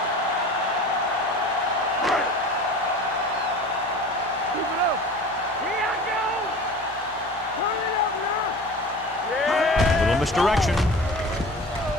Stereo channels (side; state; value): both; normal; correlation 0.38